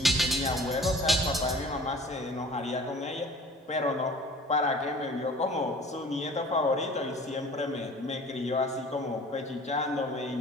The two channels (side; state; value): both; normal; correlation 0.47